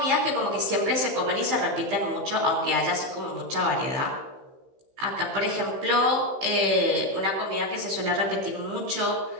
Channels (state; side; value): late; left; 16 ms